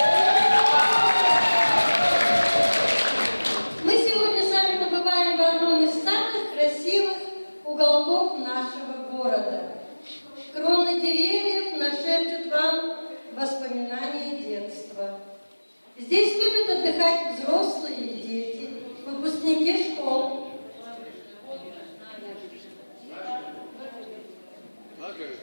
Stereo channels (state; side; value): inverted; both; correlation -1.00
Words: Мы сегодня с вами побываем в одном из самых красивых уголков нашего города. Кроны деревьев нашепчут вам воспоминания детства. Здесь любят отдыхать взрослые и дети, выпускники школ.